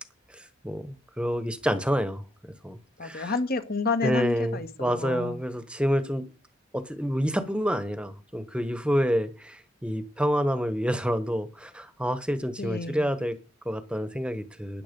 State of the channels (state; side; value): normal; both; correlation 0.84